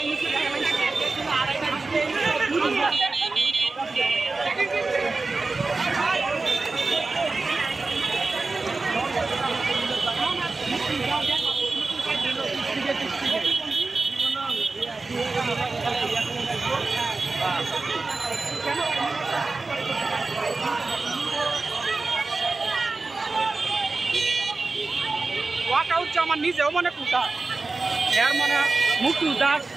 ওয়াকআউট আমার নিজেও মনে কুটা এর মনে মুক্তি উদ্ধার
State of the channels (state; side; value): quieter; left; 3.7 dB